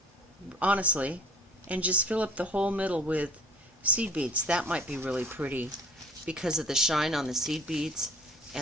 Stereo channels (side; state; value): both; normal; correlation 0.51